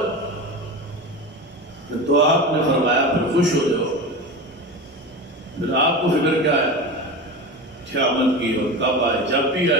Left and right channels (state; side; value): normal; both; correlation 0.26